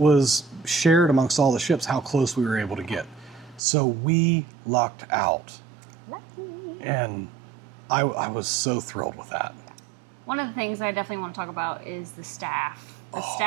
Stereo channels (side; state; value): left; drops out; at 3.6 s